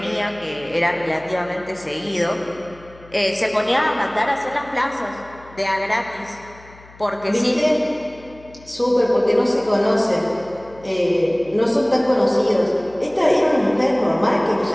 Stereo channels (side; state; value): left; noise; hum, 23 dB below the sound